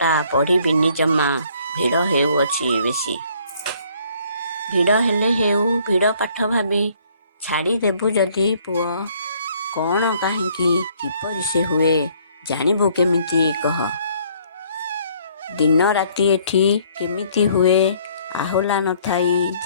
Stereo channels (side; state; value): both; inverted; correlation -0.62